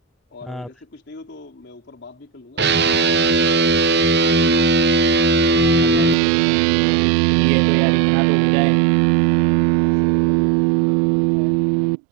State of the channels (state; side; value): drops out; left; at 6.2 s